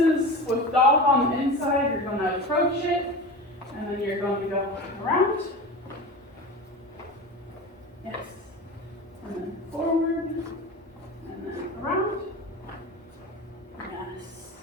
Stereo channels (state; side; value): normal; both; correlation 0.30